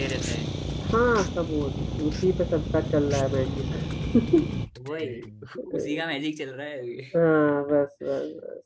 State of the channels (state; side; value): identical; both; correlation 1.00